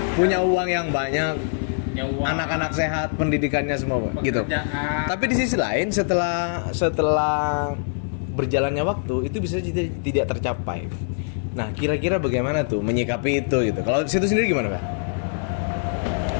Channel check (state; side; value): silent; right; digital silence